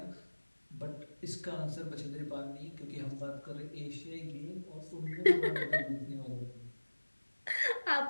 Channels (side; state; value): both; inverted; correlation -1.00